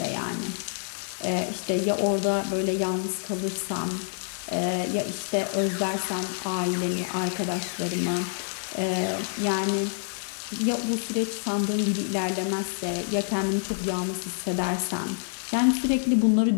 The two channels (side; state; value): right; silent; digital silence